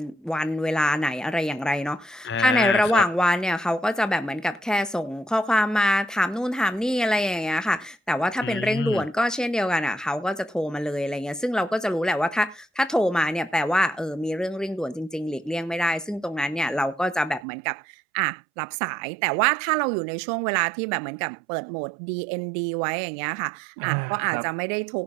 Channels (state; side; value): drops out; left; at 17.4 s